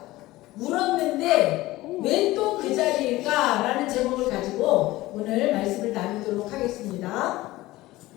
울었는데 왜 또 그 자리일까? 라는 제목을 가지고 오늘 말씀을 나누도록 하겠습니다.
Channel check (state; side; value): quieter; right; 18.1 dB